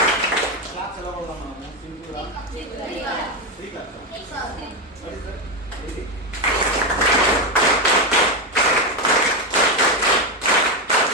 క్లాస్ ఎలా కొడదాం మనము? సింపుల్గా 3 class.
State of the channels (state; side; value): normal; both; correlation 0.09